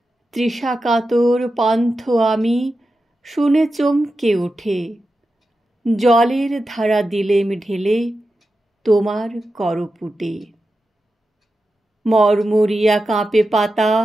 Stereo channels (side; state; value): both; normal; correlation 0.91